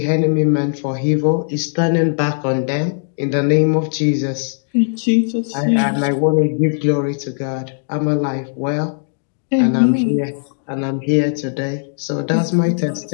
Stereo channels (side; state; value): right; silent; digital silence